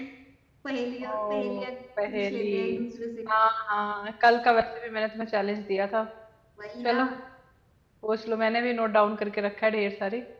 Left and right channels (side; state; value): both; identical; correlation 1.00